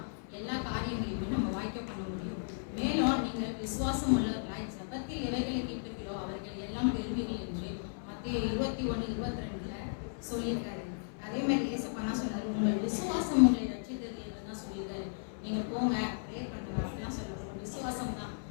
எல்லா காரியங்களையுமே நம்ம வாய்க்க பண்ண முடியும். மேலும் நீங்கள் விசுவாசம் உள்ளவர்களாய் ஜபத்தில் எவைகளை கேட்கிறீர்களோ அவர்கள் எல்லாம் பெறுவீர்கள் என்று மத்தேயு 21:22 சொல்லியிருக்காரு. அதே மாதிரி ஏசப்பா சொன்னாரு, உங்கள் விசுவாசம் உங்களை ரட்சித்தது தான் சொல்லியிருக்காரு. நீங்க போங்க ப்ரேயர் பண்ணுங்க அப்படிலாம் சொல்றாரு. உங்க விசுவாசம் தான்.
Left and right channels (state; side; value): silent; right; 54 dB below the other